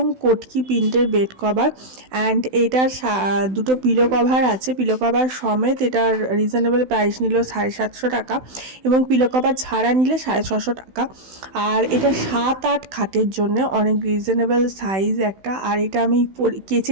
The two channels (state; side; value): late; left; 16 ms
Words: কটকি প্রিন্টের বেড কভার। অ্যান্ড এটার দুটো পিলো কভার আছে, পিলো কভার সমেত এটার রিজনেবল প্রাইস নিল 750 টাকা, এবং পিলো কভার ছাড়া নিলে 650 টাকা। আর এটা 7-8 খাটের জন্য অনেক রিজনেবল সাইজ একটা। আর এটা আমি